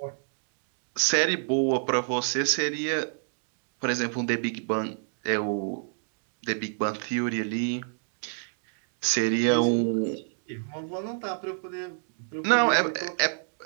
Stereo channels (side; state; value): left; silent; digital silence